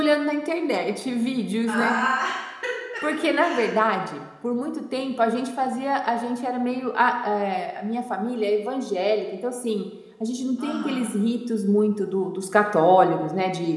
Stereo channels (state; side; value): identical; both; correlation 1.00